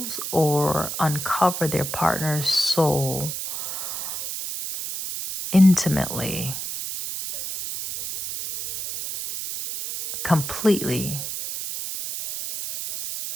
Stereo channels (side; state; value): right; noise; hiss, 5 dB below the sound